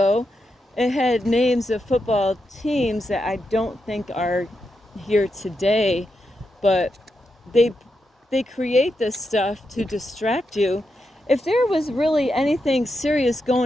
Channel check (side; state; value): both; normal; correlation 0.85